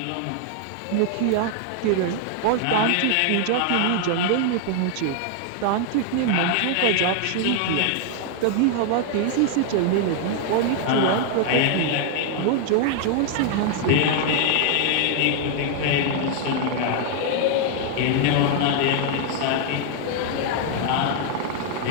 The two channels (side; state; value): both; different; correlation 0.00